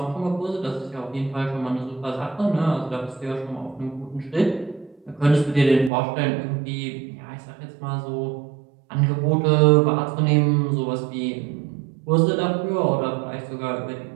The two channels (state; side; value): drops out; left; at 5.9 s